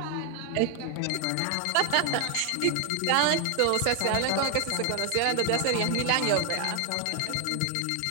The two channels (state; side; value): different; both; correlation 0.00